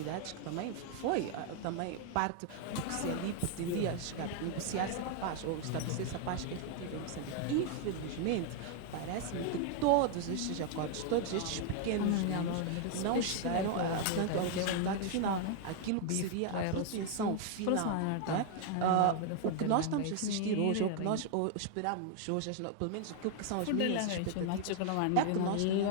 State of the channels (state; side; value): different; both; correlation 0.00